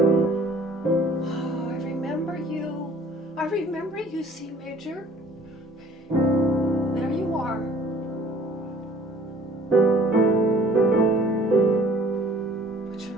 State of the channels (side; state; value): both; normal; correlation 0.53